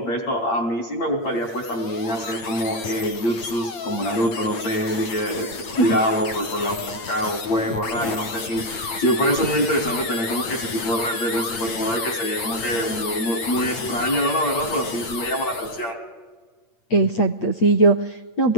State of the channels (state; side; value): late; right; 8.7 ms